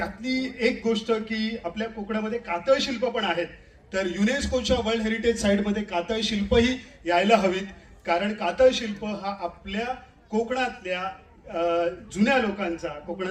एक गोष्ट की आपल्या कोकणामध्ये कातळ शिल्प पण आहेत, तर युनेस्कोच्या वर्ल्ड हेरिटेज साईटमध्ये कातळ शिल्पही यायला हवीत. कारण कातळ शिल्प हा आपल्या कोकणातल्या जुन्या लोकांचा,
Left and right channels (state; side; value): identical; both; correlation 1.00